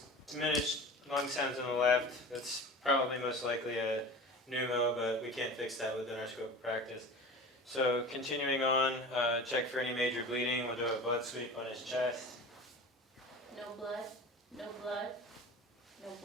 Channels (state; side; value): normal; both; correlation 0.35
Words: diminished lung sounds on the left, that's probably most likely a pneumo, but we can't fix that within our scope of practice. So continuing on, check for any major bleeding. We'll do a blood sweep on his chest. No blood. No blood. No